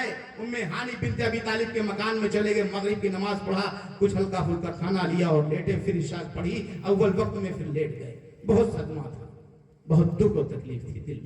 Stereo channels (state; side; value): identical; both; correlation 1.00